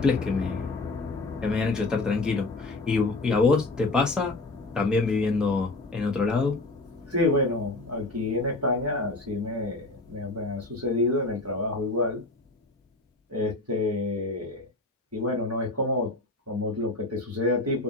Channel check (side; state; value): right; quieter; 3.0 dB